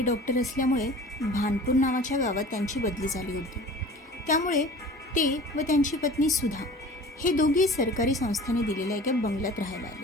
डॉक्टर असल्यामुळे भानपूर नावाच्या गावात त्यांची बदली झाली होती. त्यामुळे ते व त्यांची पत्नी सुधा हे दोघे सरकारी संस्थेने दिलेल्या एका बंगल्यात राहायला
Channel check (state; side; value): normal; both; correlation 0.42